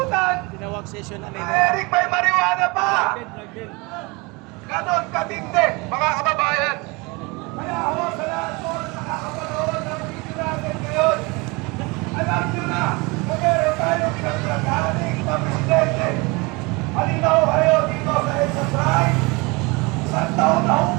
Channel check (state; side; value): quieter; left; 26.5 dB